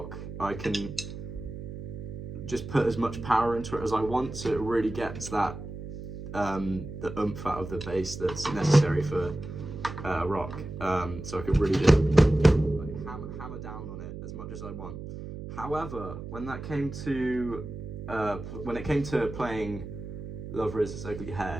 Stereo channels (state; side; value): noise; right; hum, 9 dB below the sound